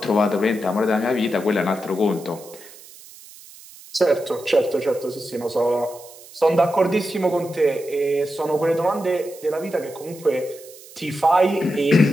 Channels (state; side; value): noise; right; hiss, 20 dB below the sound